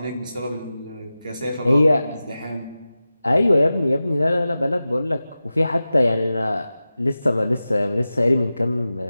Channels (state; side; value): inverted; both; correlation -0.95